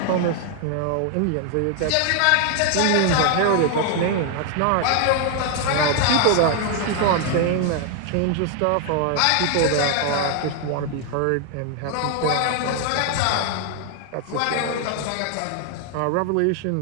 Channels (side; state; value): both; different; correlation 0.00